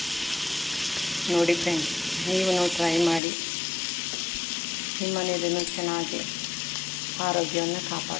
ನೋಡಿ ಫ್ರೆಂಡ್ಸ್, ನೀವು ಟ್ರೈ ಮಾಡಿ. ನಿಮ್ಮ ಮನೆಯಲ್ಲೂ ಚೆನ್ನಾಗಿ ಆರೋಗ್ಯವನ್ನು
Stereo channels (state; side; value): drops out; right; at 3.2 s